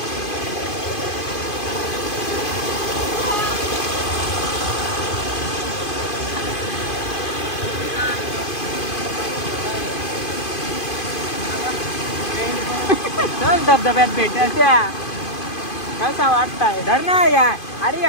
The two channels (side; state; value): right; late; 2.5 ms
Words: धबधब्यात भेटायच्या कसा वाटताय धर ना यार. अरे